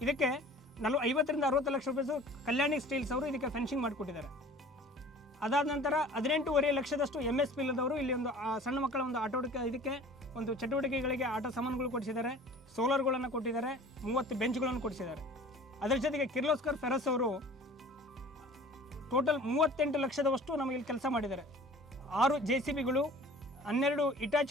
ಇದಕ್ಕೆ 50 ರಿಂದ 60 ಲಕ್ಷ ರೂಪಾಯಿ ಕಲ್ಯಾಣಿ ಸ್ಟೀಲ್ಸ್ ಅವರು ಇದಕ್ಕೆ ಫೆನ್ಸಿಂಗ್ ಮಾಡಿಕೊಟ್ಟಿದ್ದಾರೆ. ಅದಾದ ನಂತರ 18.5 ಲಕ್ಷದಷ್ಟು MSP ಇಲ್ಲದವರು ಇಲ್ಲಿ ಒಂದು ಸಣ್ಣ ಮಕ್ಕಳ ಒಂದು ಇದಕ್ಕೆ ಒಂದು ಚಟುವಟಿಕೆಗಳಿಗೆ ಆಟ ಸಾಮಾನುಗಳು ಕೊಡಿಸಿದ್ದಾರೆ, ಸೋಲಾರ್ಗಳನ್ನು ಕೊಟ್ಟಿದ್ದಾರೆ, 30 ಬೆಂಚ್ಗಳನ್ನು ಕೊಡಿಸಿದ್ದಾರೆ. ಅದರ ಜೊತೆಗೆ ಕಿರ್ಲೋಸ್ಕರ್ ಫೆರಸ್ ಅವರು ಟೋಟಲ್ 38 ಲಕ್ಷದವಷ್ಟು ನಮಗೆ ಇಲ್ಲಿ ಕೆಲಸ ಮಾಡಿದ್ದಾರೆ. 6 JCBಗಳು, 12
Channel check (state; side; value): normal; both; correlation 0.45